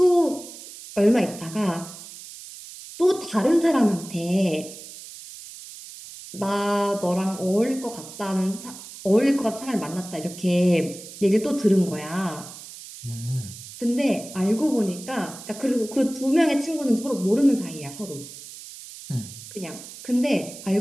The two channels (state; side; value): noise; right; hiss, 15 dB below the sound